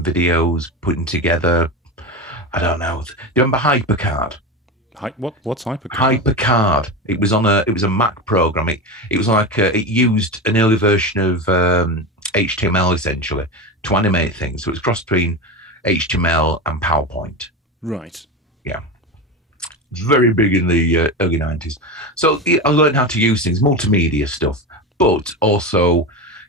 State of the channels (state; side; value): normal; both; correlation 0.21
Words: videos, putting together, I don't know. Do you remember HyperCard? What's HyperCard? HyperCard. It was a Mac program. It was like it used an early version of HTML essentially to animate things. So it was cross between HTML and PowerPoint. Right. Yeah. Very big in the early 90s. So I learned how to use things, multimedia stuff, but also,